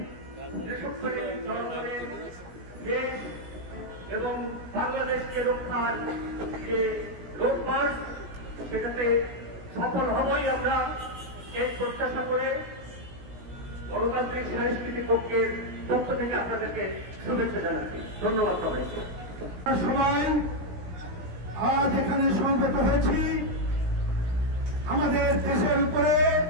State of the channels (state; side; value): late; left; 17 ms